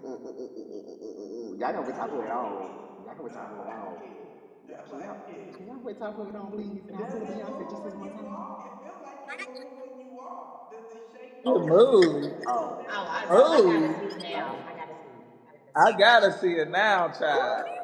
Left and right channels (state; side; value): identical; both; correlation 1.00